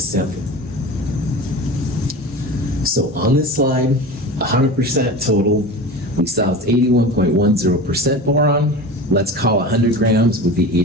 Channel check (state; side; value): normal; both; correlation 0.32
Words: sample. So on this slide, 100% total, we saw it's 81.10% boron. Let's call 100 grams would be